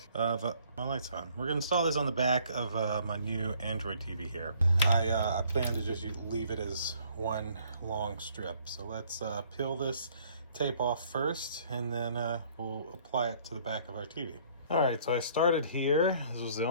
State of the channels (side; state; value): both; inverted; correlation -0.60